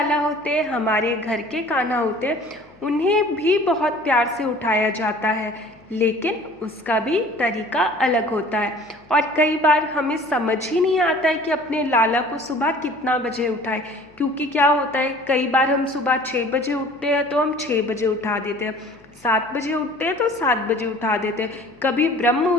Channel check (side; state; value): left; noise; hum, 28 dB below the sound